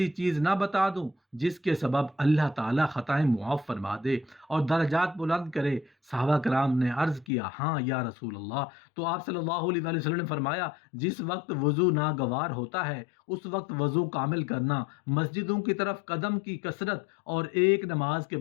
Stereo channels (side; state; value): right; drops out; at 7.2 s